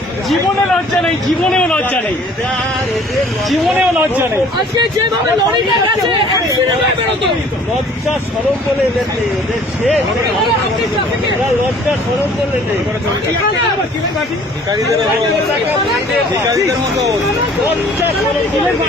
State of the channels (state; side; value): normal; both; correlation 0.53